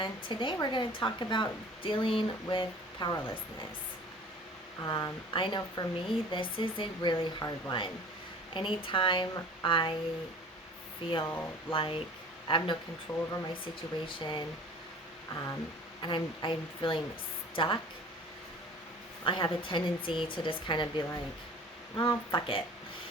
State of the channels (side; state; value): both; normal; correlation 0.45